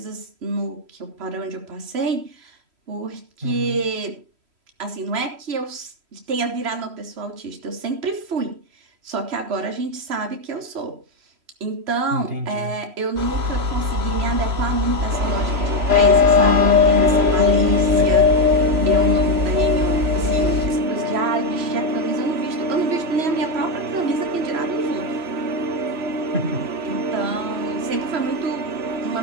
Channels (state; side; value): late; left; 3.0 ms